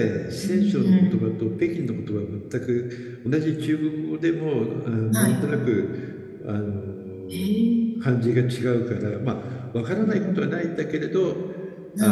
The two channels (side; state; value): both; identical; correlation 1.00